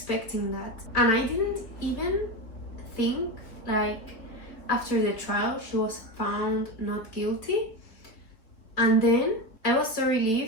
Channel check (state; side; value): late; right; 3.9 ms